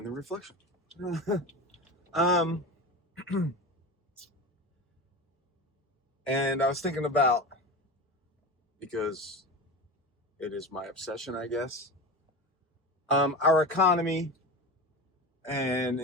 the reflection. And I was thinking about, because it is my obsession, I guess, our economy and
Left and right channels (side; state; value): both; normal; correlation 0.27